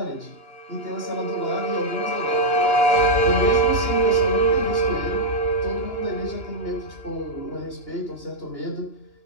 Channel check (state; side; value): late; right; 2.9 ms